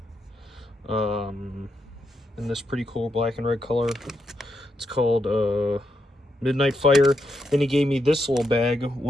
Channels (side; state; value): both; normal; correlation 0.82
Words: in this pretty cool black and red color. It's called Midnight Fire. Then he gave me this little bag,